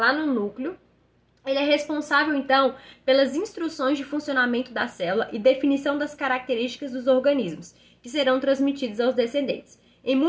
no núcleo. Ele é responsável, então, pelas instruções de funcionamento da célula e definição das características dos organismos, que serão transmitidos aos descendentes. Em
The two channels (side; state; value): both; identical; correlation 1.00